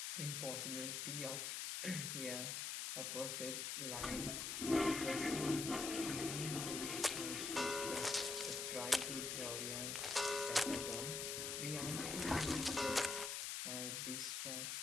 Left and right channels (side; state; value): left; noise; hiss, 2 dB below the sound